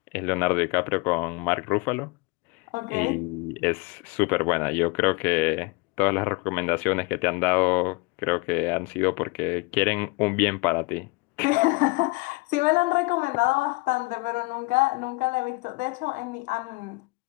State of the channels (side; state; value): right; quieter; 26.8 dB